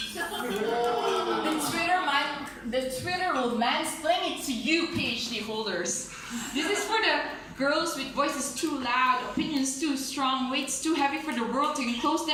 The Twitter will mansplain it to you, PhD holders. This is for the girls with voices too loud, opinions too strong, weights too heavy for the world to enclose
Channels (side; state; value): both; identical; correlation 1.00